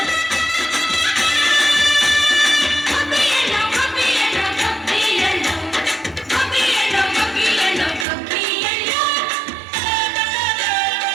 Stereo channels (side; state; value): left; drops out; at 8.1 s